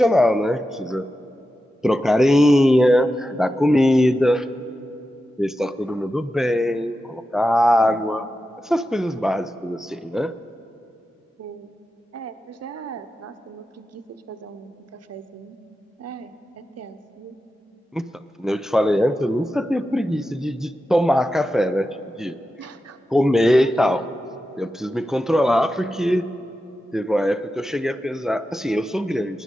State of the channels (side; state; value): both; normal; correlation 0.91